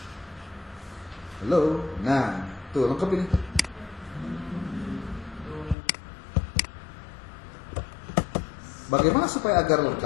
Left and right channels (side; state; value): right; drops out; at 5.8 s